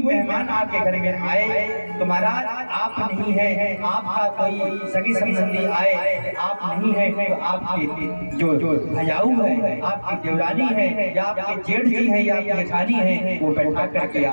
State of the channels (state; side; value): inverted; both; correlation -1.00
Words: मेहमान आपके घर में आए तो महाराज आप नहीं है, आपका कोई सगी संबंधी आए, आप नहीं है तो आपके जो भैयाऊ है, आपकी देवरानी है, या आपके जेठ जी है, या आपकी जेठानी है, वो बैठा करके